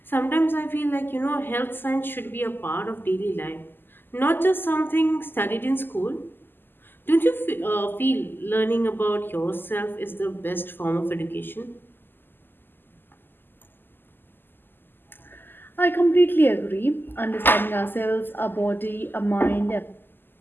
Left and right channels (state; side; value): late; right; 0.095 ms